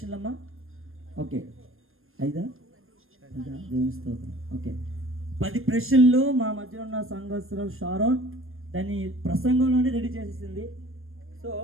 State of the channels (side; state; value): left; late; 0.60 ms